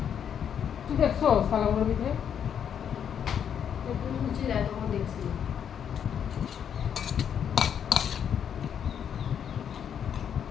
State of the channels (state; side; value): quieter; right; 8.4 dB